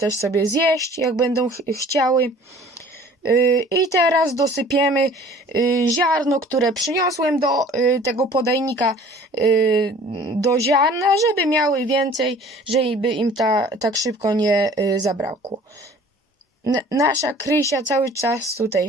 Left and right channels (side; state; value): both; normal; correlation 0.49